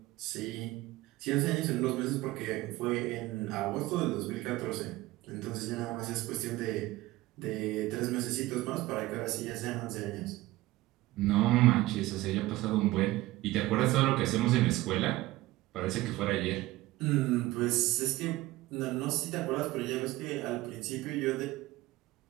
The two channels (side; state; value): left; quieter; 18.1 dB